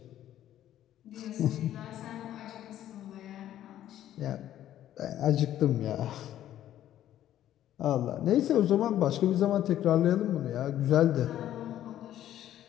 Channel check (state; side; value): quieter; right; 12.1 dB